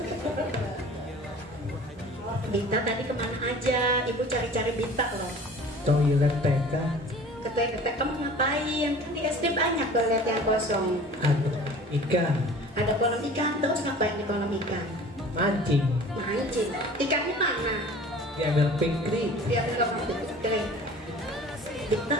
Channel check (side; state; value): both; normal; correlation 0.44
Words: Dita tadi kemana aja? Ibu cari-cari Dita loh. Toilet TK. Ke toilet kamu ngapain? Kan di SD banyak toilet yang kosong. Ada ikan. Ada kolam ikan, terus ngapain di kolam ikan? Mancing. Mancing. Ikannya mana? Diambil pikri. Dia bilang kering. Kita